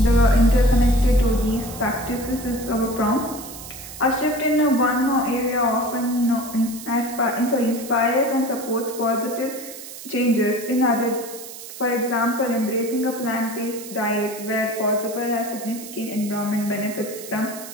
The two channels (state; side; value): noise; right; hiss, 13 dB below the sound